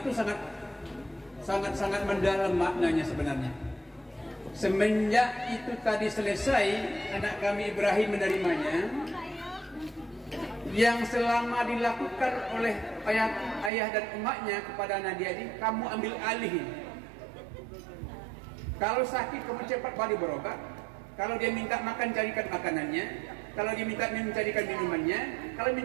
sangat mendalam maknanya sebenarnya. Semenjak itu tadi selesai, anak kami Ibrahim menerimanya. Yang selama dilakukan oleh ayah dan emaknya kepada Nadia ini, kamu ambil alih. Kalau sakit, kamu cepat balik berobat. Kalau dia minta makan, carikan makanannya. Kalau dia minta minum, carikan minumannya. Kalau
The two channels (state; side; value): drops out; left; at 13.7 s